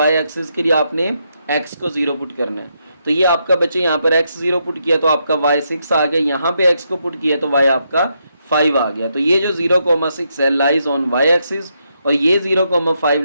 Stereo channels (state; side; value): inverted; both; correlation -0.80